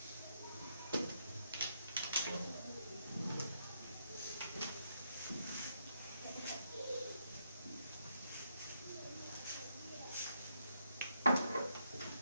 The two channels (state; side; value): inverted; both; correlation -0.77